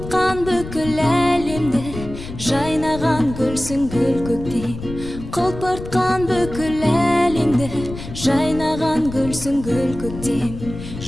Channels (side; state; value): left; noise; rumble, 11 dB below the sound